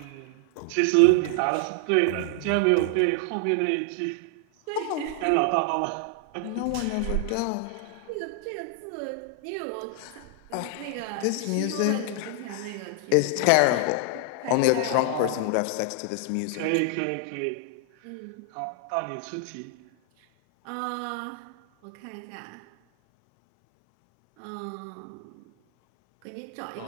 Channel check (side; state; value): both; different; correlation 0.00